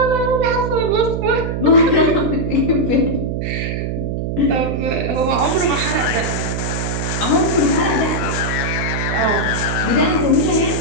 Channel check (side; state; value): right; noise; hum, 2 dB below the sound